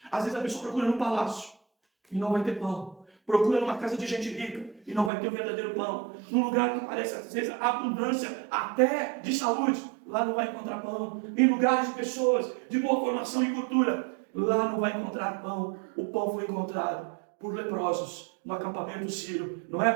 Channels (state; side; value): drops out; left; at 5.1 s